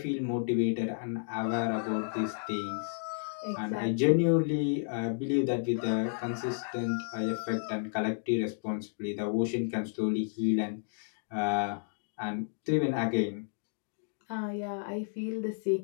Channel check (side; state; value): right; silent; digital silence